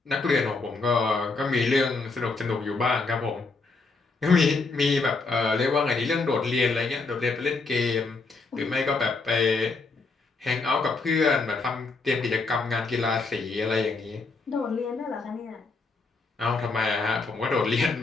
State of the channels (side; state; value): right; quieter; 4.0 dB